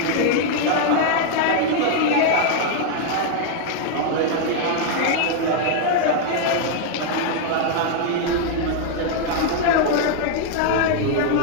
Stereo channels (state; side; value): different; both; correlation 0.00